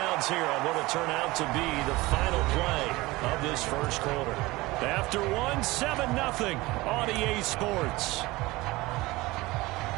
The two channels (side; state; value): left; quieter; 20.7 dB